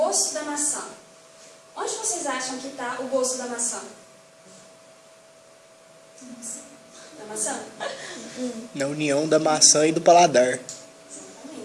da maçã. Onde vocês acham que está o gosto da maçã? Da maçã? Na união da maçã e do paladar.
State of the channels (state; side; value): identical; both; correlation 1.00